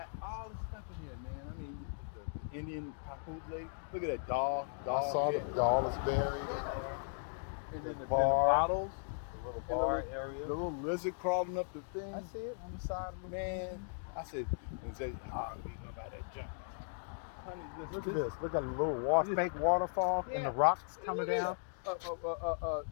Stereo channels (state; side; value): silent; right; digital silence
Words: all the stuff in here, man. I mean, the Indian papoose. Look at that dog I saw the head. doll is buried in Yeah. there. And then the bar, bottles, the little and the bar little, area. the little lizard crawling up the thing. I see it on the side of the Man, I said, and say, oh, we gonna buy that junk. Honey, Look at this. Look at a little fake waterfall and the rocks coming down. A